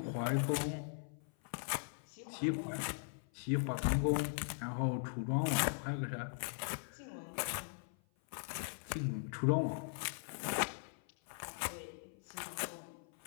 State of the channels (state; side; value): silent; right; 51 dB below the other